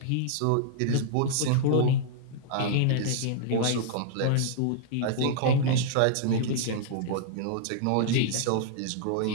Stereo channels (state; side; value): different; both; correlation -0.01